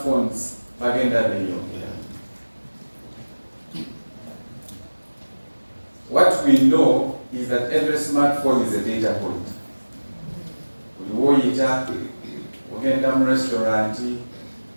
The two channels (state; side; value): inverted; both; correlation -1.00